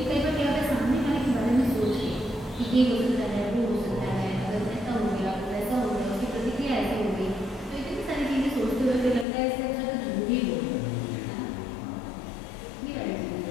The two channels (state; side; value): drops out; right; at 9.2 s